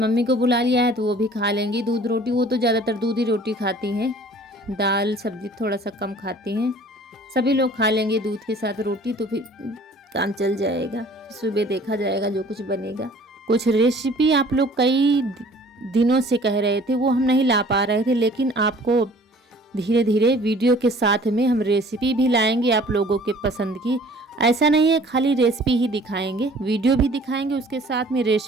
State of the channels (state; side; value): normal; both; correlation 0.51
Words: को बुला लिया है तो वो भी खा लेंगी दूध रोटी। वो तो ज़्यादातर दूध ही रोटी खाती हैं, दाल सब्जी थोड़ा सा कम खाती हैं। सभी लोग खा लेंगे दूध के साथ रोटी तो फिर काम चल जाएगा। सुबह देखा जाएगा जो कुछ बनेगा। कुछ रेसिपी आप लोग कई दिनों से कह रहे थे, वो हम नहीं ला पा रहे थे, लेकिन आपको धीरे धीरे वीडियो के साथ में हम रेसिपी भी लाएंगे आप लोगों के पसंद की। ऐसा नहीं है खाली रेसिपी ही दिखाएंगे, वीडियो भी दिखाएंगे, उसके साथ में